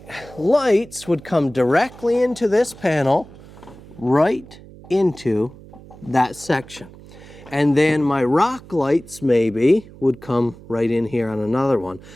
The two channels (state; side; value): noise; right; hum, 20 dB below the sound